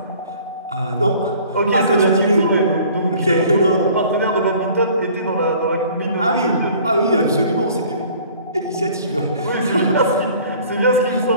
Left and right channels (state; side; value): inverted; both; correlation -0.51